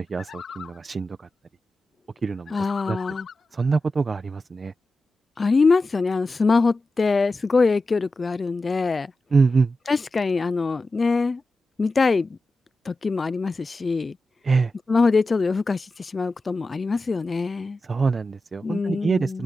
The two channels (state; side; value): normal; both; correlation 0.92